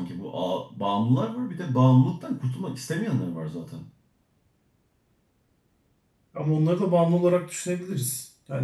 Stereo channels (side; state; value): both; identical; correlation 1.00